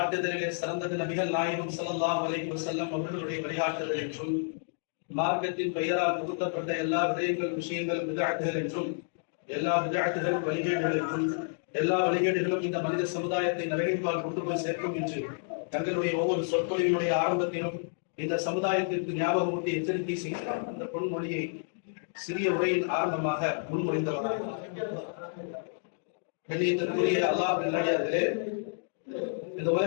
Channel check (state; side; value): silent; right; digital silence